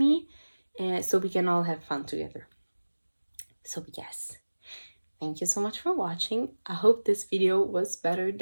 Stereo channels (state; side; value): inverted; both; correlation -1.00